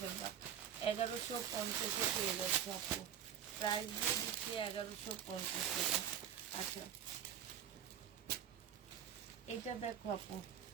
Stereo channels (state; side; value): quieter; left; 9.4 dB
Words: ফেলবা। 1150 পেয়ে যাচ্ছে আপু। প্রাইস দিয়ে দিচ্ছি 1150 টাকা। আচ্ছা, এটা দেখো আপু,